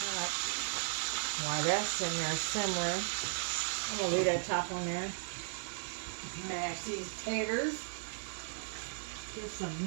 While that's in there simmering, I'm gonna leave that top on there. Mash these taters. Get some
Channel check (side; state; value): left; silent; digital silence